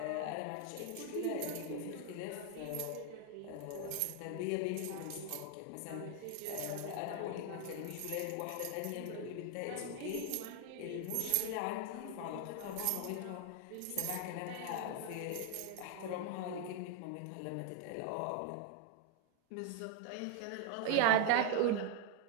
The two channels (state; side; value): different; both; correlation 0.00